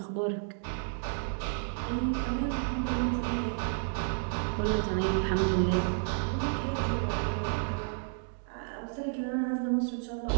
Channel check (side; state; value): left; silent; digital silence